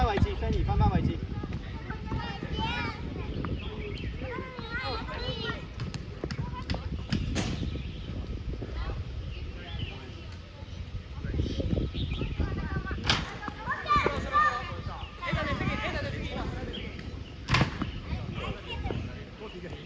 位置 ，Fanny 翻返位置。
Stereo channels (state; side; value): identical; both; correlation 1.00